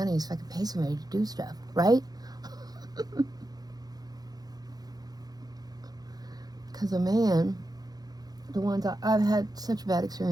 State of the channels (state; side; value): late; left; 0.19 ms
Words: so I could pay somebody to do stuff, right? Because a man, the ones I've had such bad